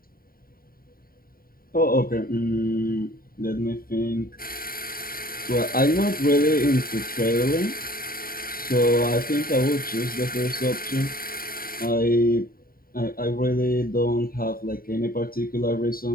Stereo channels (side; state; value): right; late; 0.43 ms